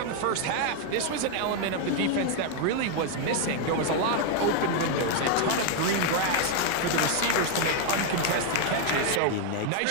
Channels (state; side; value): different; both; correlation 0.01